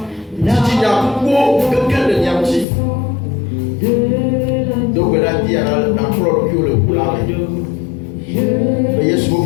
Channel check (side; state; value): right; drops out; at 2.7 s